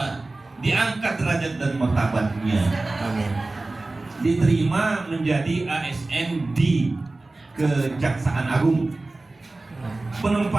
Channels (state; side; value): quieter; left; 3.1 dB